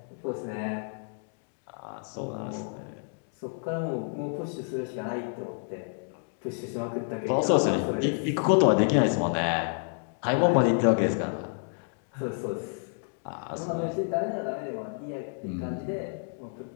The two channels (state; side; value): silent; right; 58 dB below the other